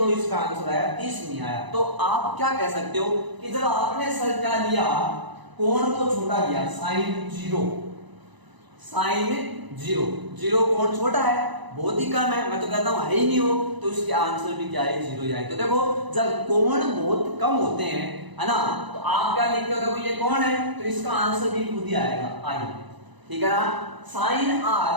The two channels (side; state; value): left; late; 1.0 ms